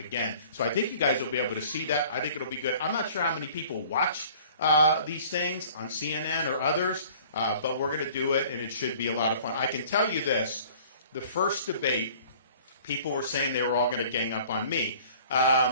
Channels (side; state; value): both; inverted; correlation -0.50